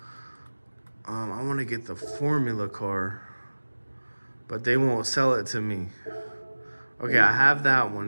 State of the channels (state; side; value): inverted; both; correlation -1.00